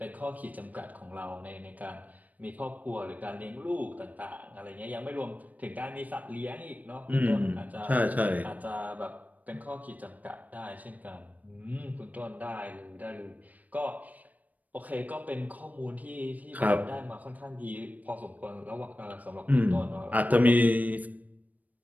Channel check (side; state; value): left; late; 0.076 ms